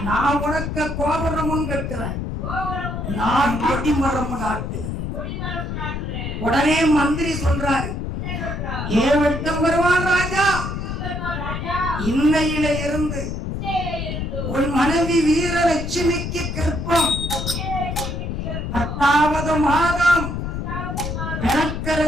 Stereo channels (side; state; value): left; noise; rumble, 4 dB below the sound